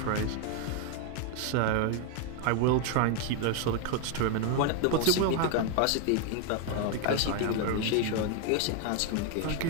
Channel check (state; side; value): different; both; correlation 0.01